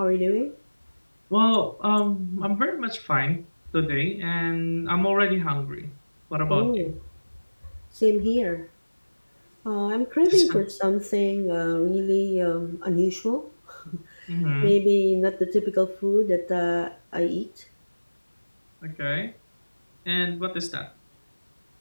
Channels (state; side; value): inverted; both; correlation -1.00